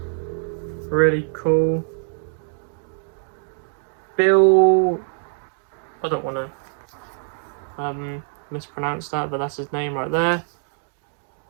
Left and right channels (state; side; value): silent; left; digital silence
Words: Really cool. Bill, I don't want to mispronounce that, but that's his name right there.